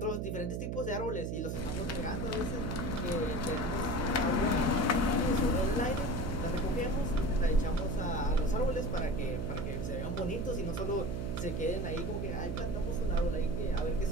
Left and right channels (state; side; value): noise; right; hum, 2 dB below the sound